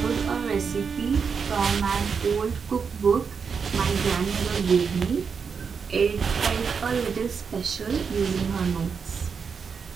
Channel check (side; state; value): left; quieter; 6.0 dB